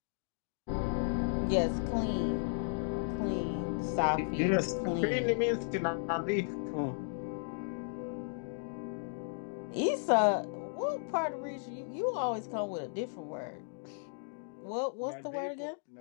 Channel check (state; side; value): silent; right; digital silence